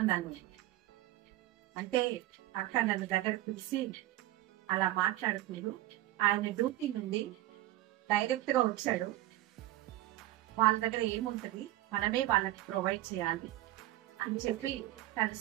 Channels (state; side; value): quieter; left; 15.5 dB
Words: అంటే అక్క నన్ను దగ్గర పిలిచి అలా మాట్లాడుకుంటూ ఆయన డ్యూటీ నుండి డైరెక్ట్ గా వచ్చాడు. వాళ్ళ దగ్గర ఏముంటది, మనమే వాళ్ళకి ప్రొవైడ్ చేయాలి అని చెప్పి తను